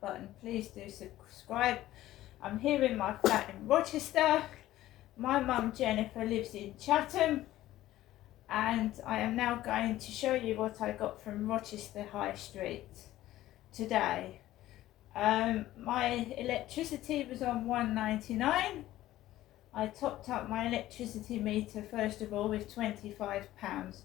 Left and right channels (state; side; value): quieter; right; 14.8 dB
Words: button. Please do subscribe. I'm here in my flat in Rochester. My mum Jennifer lives in Chatham, and I am now going to show you what I got from Rochester High Street today. My electricity was on £1.99. I topped up my electricity meter first of all with £25.